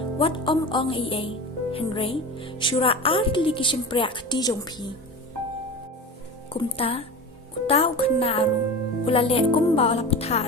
wat ong iay, Henry, syura artli kisimprak di jong pi. Kumta, uta ukana aru, ula le kumba ula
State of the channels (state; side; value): normal; both; correlation 0.30